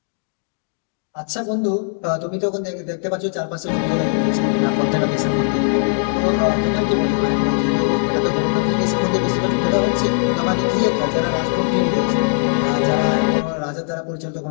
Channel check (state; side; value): silent; right; digital silence